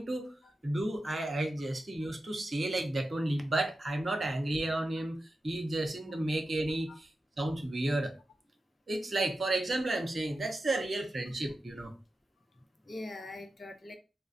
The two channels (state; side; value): normal; both; correlation 0.91